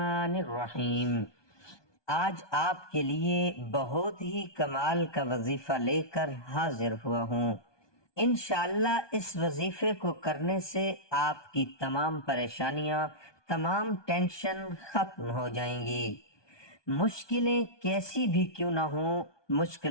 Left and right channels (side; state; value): right; late; 1.2 ms